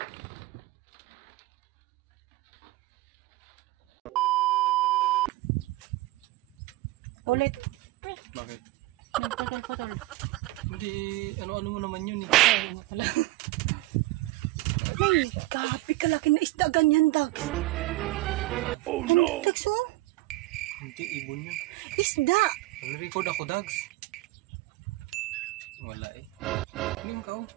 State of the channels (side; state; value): left; quieter; 19.1 dB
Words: Ulit. Bakit? Nagpatol-patol. Hindi, ano-ano mo naman yun eh. Ay, pala. Ay, grabe kalaki na isda ganyan, Dags. Oh no! Dags, oh? Hindi, ibon yun. Isda! Nag-record ako, Dags. Wala eh. Ano yung kao?